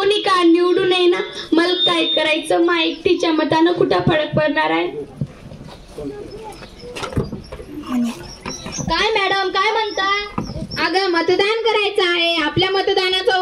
का निवडून नये ना, मला काय करायचं? मा एकटीच्या मतानं कुठं फरक पडणार आहे? काय मॅडम, काय म्हणता? अगं मतदान करायचं आहे, आपल्या मतदानाचा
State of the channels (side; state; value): both; identical; correlation 1.00